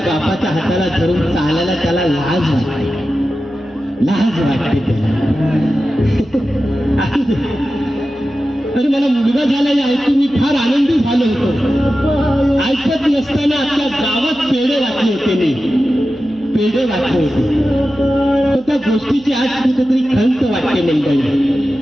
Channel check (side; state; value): right; noise; hum, 26 dB below the sound